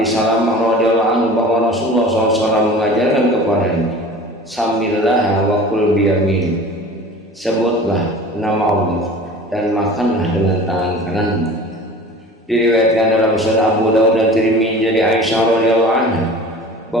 Salamah radhiyallahu anhu bahwa Rasulullah SAW mengajarkan kepadanya, Samillah wa kul biyamin, sebutlah nama Allah dan makanlah dengan tangan kananmu. Diriwayatkan dalam Sunan Abu Dawud dan Tirmidzi dari Aisyah radhiyallahu anha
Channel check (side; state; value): both; normal; correlation 0.40